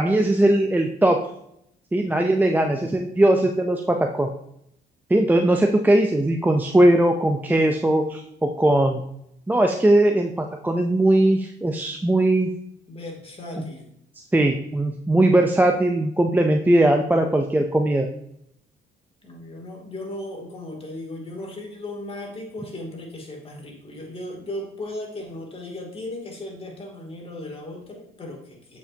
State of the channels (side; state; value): both; normal; correlation 0.88